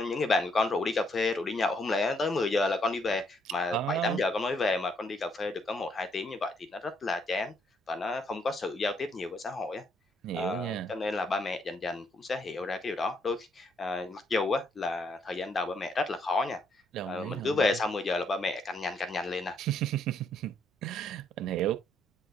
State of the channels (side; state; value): both; normal; correlation 0.71